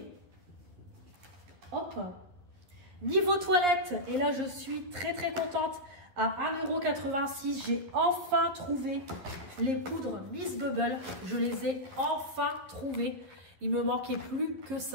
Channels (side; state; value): left; late; 11 ms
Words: Hop. Niveau toilette, et là je suis très contente. À 1,86 €, j'ai enfin trouvé les poudres Miss Bubble. Je les ai enfin trouvées. Il me manquait plus que